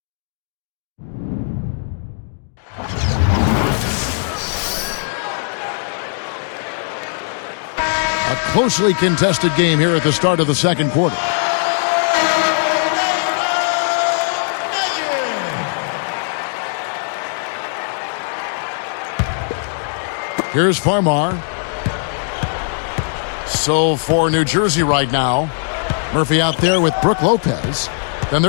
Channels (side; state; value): right; silent; digital silence